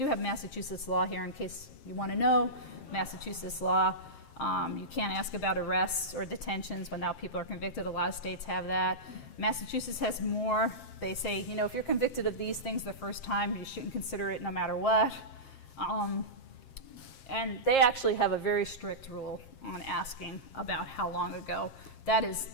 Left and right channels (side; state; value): right; late; 7.5 ms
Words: have Massachusetts law here in case you want to know. Massachusetts law, you can't ask about arrests or detentions when now people are convicted. A lot of states have that. Massachusetts has more. They say, if you're convicted of these things the first time, you shouldn't consider it no matter what. And they actually have a very strict rule on asking about how long ago. That